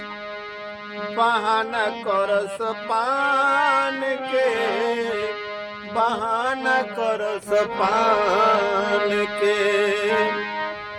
बहाना करस पान के, बहाना करस पान के।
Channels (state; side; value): identical; both; correlation 1.00